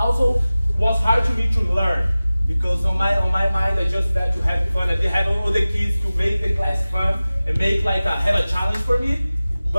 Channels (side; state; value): both; inverted; correlation -0.97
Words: was hard to me to learn. Because on my mind, I just had to have fun. I didn't have all the kids to make the class fun and make have a challenge for me.